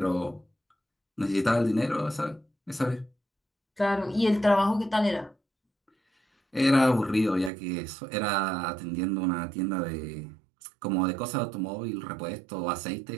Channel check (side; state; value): left; drops out; at 7.5 s